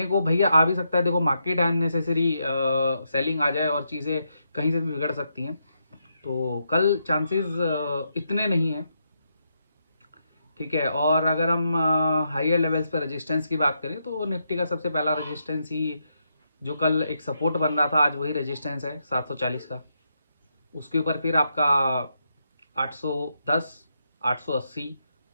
को, भैया आ भी सकता है, देखो मार्केट अननेसेसरी सेलिंग आ जाए और चीज़ें कहीं से भी बिगड़ सकती हैं, तो कल चांसेस इतने नहीं हैं, ठीक है। और अगर हम हायर लेवल्स पर रेजिस्टेंस की बात करें, तो निफ्टी का सबसे पहला रेजिस्टेंस ही जो कल एक सपोर्ट बन रहा था, आज वही रेजिस्टेंस है 740 का। उसके ऊपर फिर आपका 810, 880,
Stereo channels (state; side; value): inverted; both; correlation -0.82